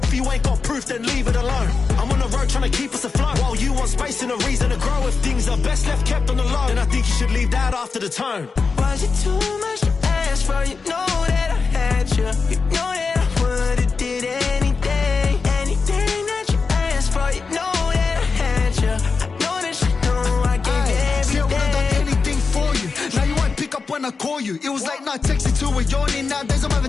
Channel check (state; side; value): quieter; right; 4.7 dB